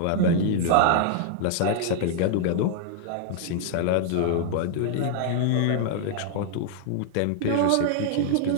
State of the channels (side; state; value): both; different; correlation -0.01